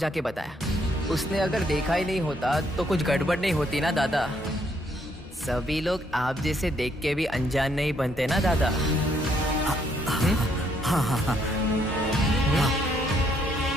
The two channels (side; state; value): both; normal; correlation 0.71